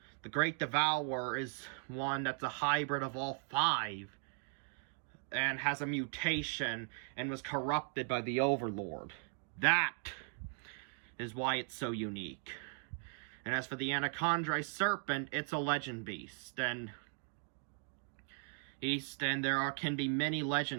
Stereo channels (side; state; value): left; silent; 52 dB below the other